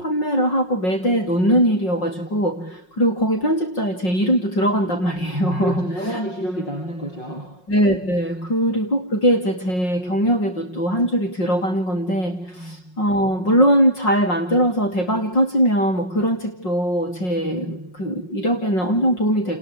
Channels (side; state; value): right; late; 5.5 ms